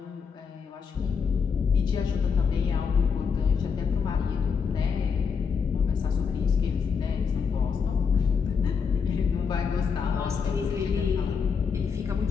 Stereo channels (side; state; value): right; quieter; 6.1 dB